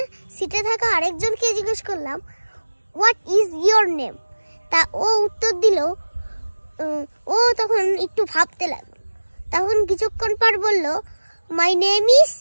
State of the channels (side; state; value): both; inverted; correlation -1.00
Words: সিটে থাকা আরেকজনকে জিজ্ঞেস করলাম হোয়াট ইজ ইয়োর নেম। তা ও উত্তর দিল, ও তখন একটু ভাবতে লাগলো। তখন কিছুক্ষণ পর বলল my name is